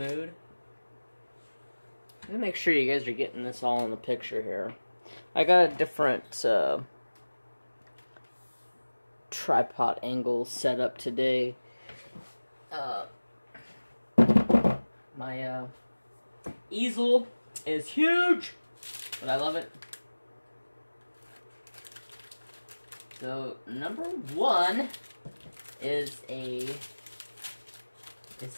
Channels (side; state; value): both; inverted; correlation -1.00